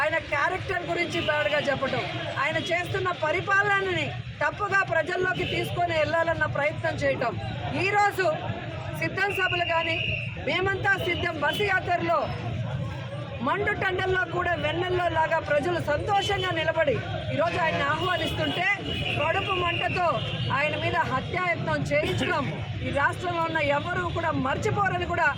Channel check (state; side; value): identical; both; correlation 1.00